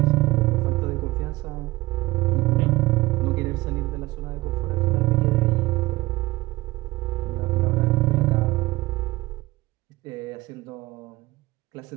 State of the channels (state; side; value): quieter; left; 19.8 dB